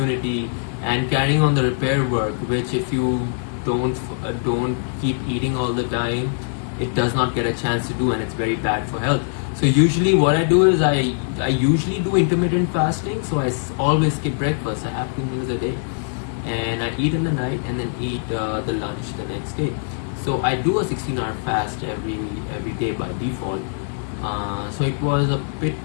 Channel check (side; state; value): right; silent; digital silence